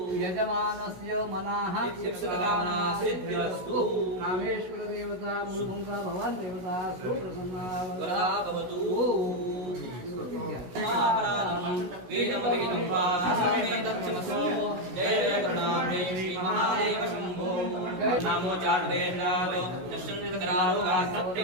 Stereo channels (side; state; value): left; late; 16 ms